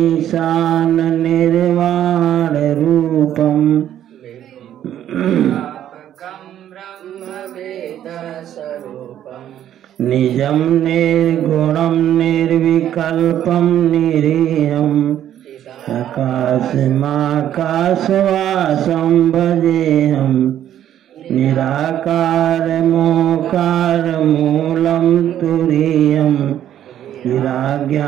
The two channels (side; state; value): left; quieter; 11.1 dB